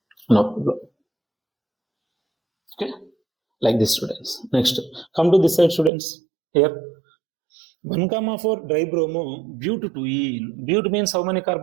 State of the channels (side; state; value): left; drops out; at 5.9 s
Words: No problem. Okay, like this students. Next, come to this side students. Here 1,4 dibromo butadiene. But means how many